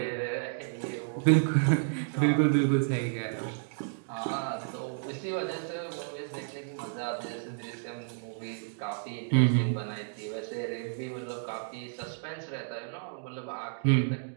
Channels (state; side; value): silent; left; digital silence